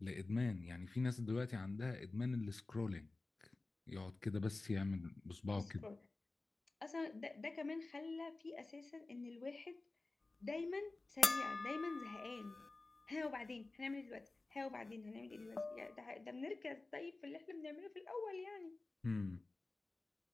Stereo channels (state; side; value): quieter; right; 3.3 dB